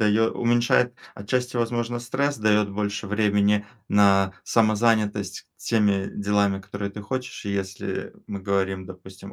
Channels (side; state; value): both; identical; correlation 1.00